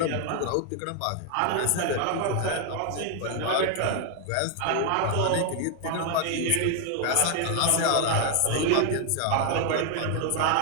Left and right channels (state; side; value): different; both; correlation 0.00